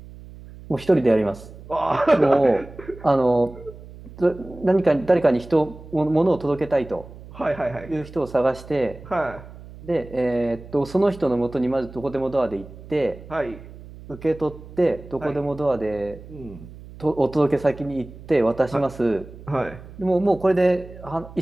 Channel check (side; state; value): right; noise; hum, 17 dB below the sound